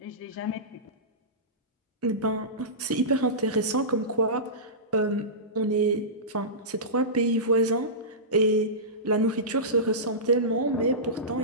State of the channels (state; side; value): normal; both; correlation -0.19